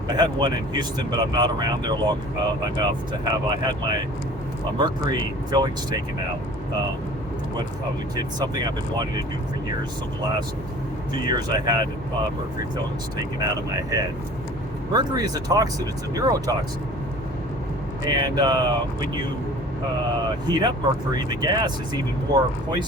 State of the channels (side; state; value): both; normal; correlation 0.45